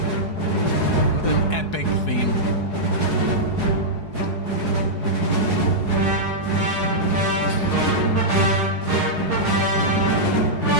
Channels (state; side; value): late; right; 4.8 ms